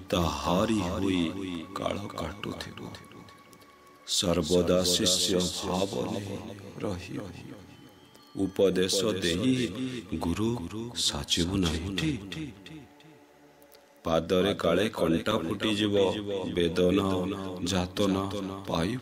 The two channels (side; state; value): both; identical; correlation 1.00